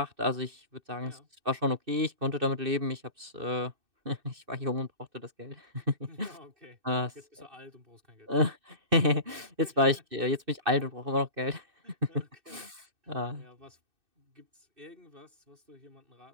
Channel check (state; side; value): late; left; 2.6 ms